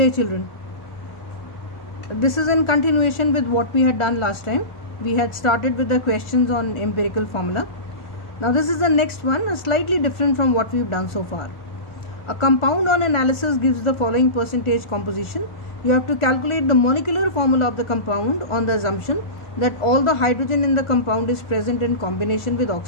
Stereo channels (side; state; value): right; late; 1.3 ms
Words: children. This is in continuation with what we had done last time. We had started with the questions on empirical formula. Now this is the next one, slightly different from what we've done so far. A compound on analysis gives the following percentage composition. You have to calculate the molecular formula of the compound on the assumption that all the hydrogen in the compound is present in combination with